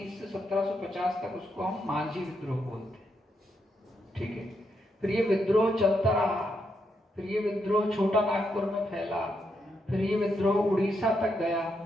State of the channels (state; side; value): normal; both; correlation 0.80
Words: से 1750 तक उसको हम मांझी विद्रोह बोलते हैं, ठीक है। फिर ये विद्रोह चलता रहा, फिर ये विद्रोह छोटा नागपुर में फैला, फिर ये विद्रोह उड़ीसा तक गया।